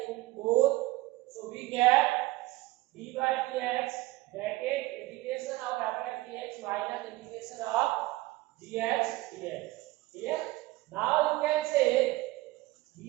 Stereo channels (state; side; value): quieter; left; 19.0 dB